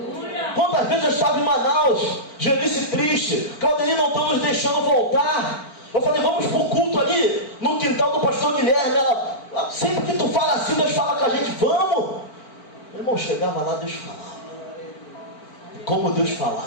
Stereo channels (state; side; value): late; right; 4.5 ms